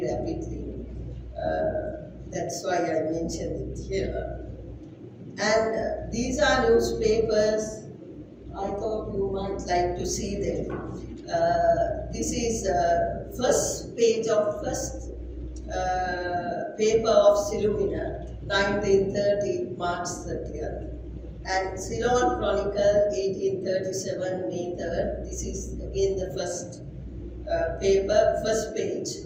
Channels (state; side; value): identical; both; correlation 1.00